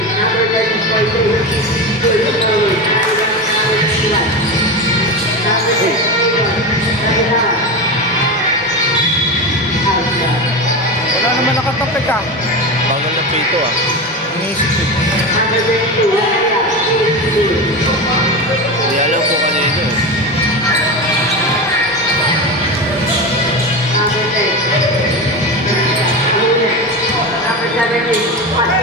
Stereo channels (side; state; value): both; normal; correlation 0.22